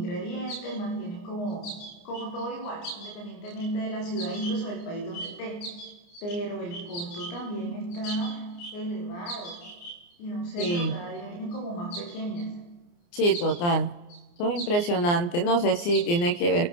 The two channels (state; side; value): late; right; 29 ms